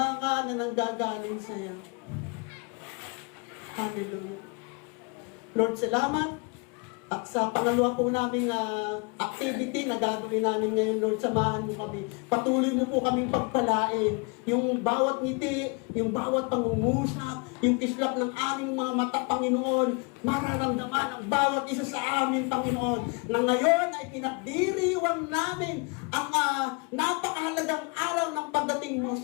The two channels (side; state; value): right; quieter; 32.4 dB